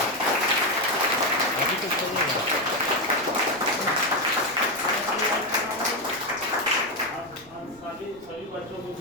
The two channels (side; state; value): right; noise; rumble, 28 dB below the sound